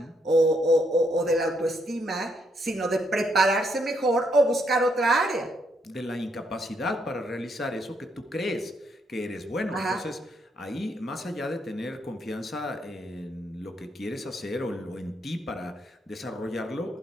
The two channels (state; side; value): normal; both; correlation 0.75